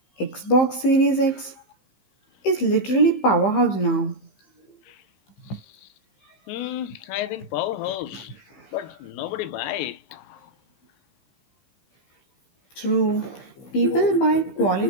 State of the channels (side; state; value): right; late; 15 ms